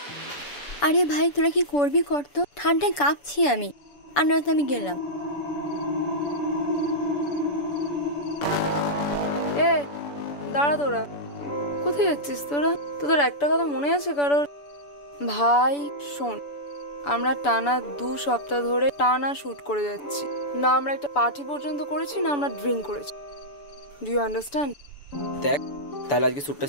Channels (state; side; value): late; right; 7.0 ms